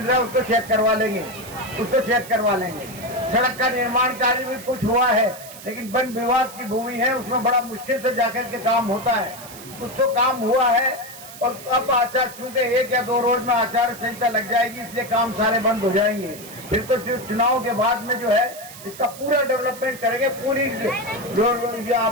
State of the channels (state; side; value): noise; right; hiss, 16 dB below the sound